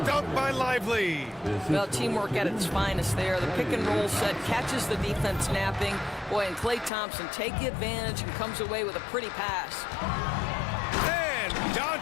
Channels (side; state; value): right; drops out; at 6.9 s